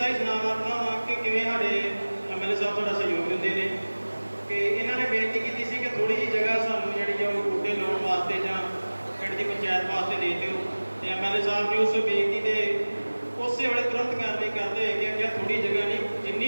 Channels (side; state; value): both; inverted; correlation -1.00